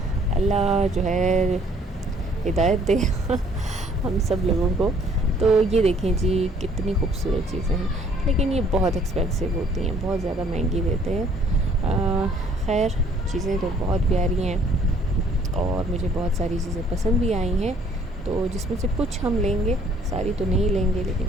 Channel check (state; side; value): normal; both; correlation 0.61